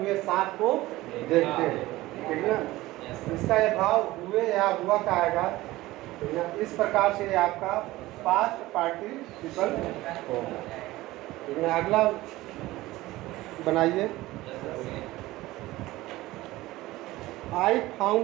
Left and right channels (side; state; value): left; quieter; 18.0 dB